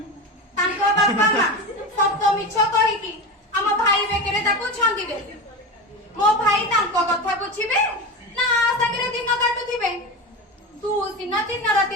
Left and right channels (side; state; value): both; normal; correlation 0.24